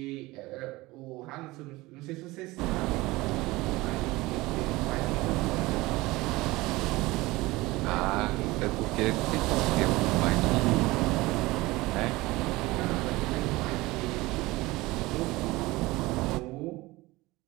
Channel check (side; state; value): left; quieter; 20.5 dB